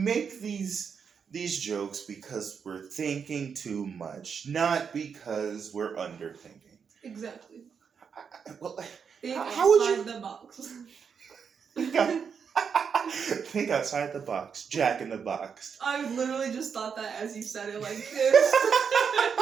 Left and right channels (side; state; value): left; quieter; 6.6 dB